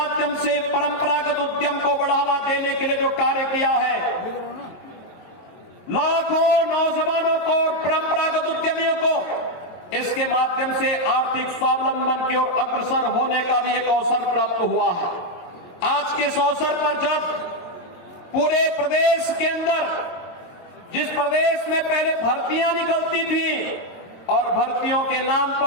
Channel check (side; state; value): right; late; 22 ms